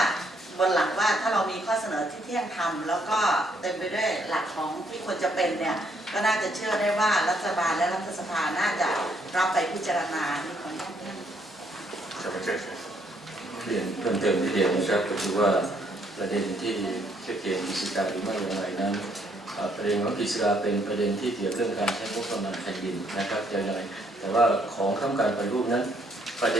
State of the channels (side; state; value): both; normal; correlation 0.70